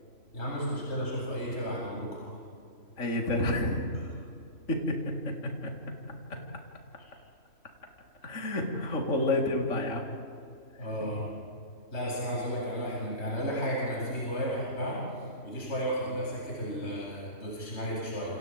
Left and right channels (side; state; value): right; late; 3.1 ms